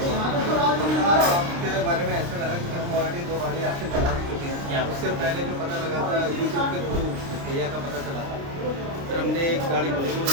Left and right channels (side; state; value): left; late; 29 ms